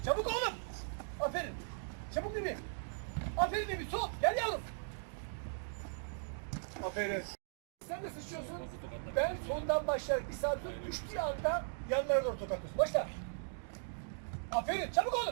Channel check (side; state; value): left; silent; digital silence